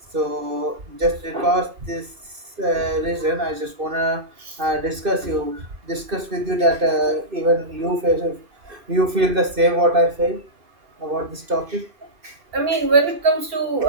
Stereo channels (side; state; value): left; late; 2.6 ms